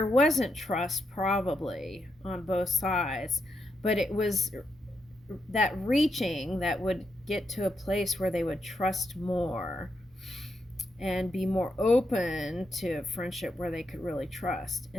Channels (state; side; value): normal; both; correlation 0.82